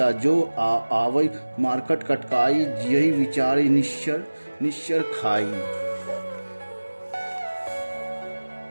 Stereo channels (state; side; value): inverted; both; correlation -1.00